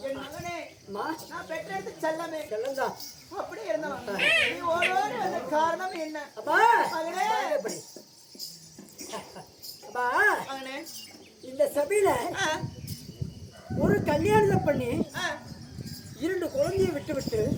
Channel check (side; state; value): both; identical; correlation 1.00